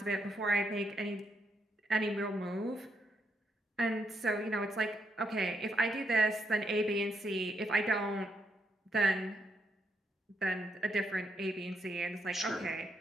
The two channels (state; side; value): normal; both; correlation 0.78